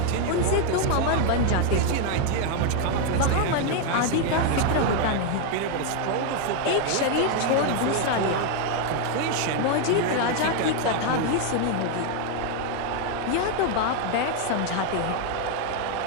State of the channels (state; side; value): different; both; correlation 0.01